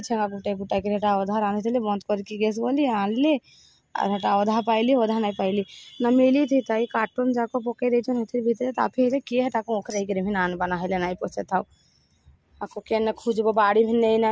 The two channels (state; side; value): identical; both; correlation 1.00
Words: छेगा गुटे गुटा के हेटा अधा रांधले बंद करके गैस गली आनली और हेटा अधा पाइली अधा नहीं पाइली न मिली थी ताई कार्टून जाको पकई देछन हेतिर भीतर ताफे रे के हेटा को ओखरे के भी नान बना हेले नहीं पछे थाओ आको केन खोजबो बाड़ी भी नहीं